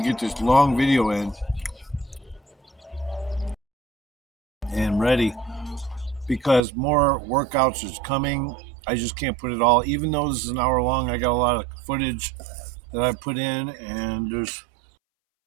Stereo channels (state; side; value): drops out; left; at 6.6 s